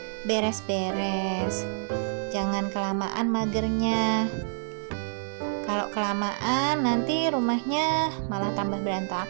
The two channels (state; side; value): silent; left; digital silence